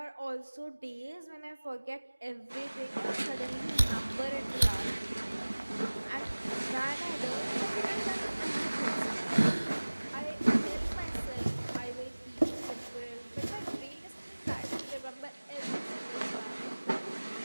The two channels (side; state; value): both; inverted; correlation -1.00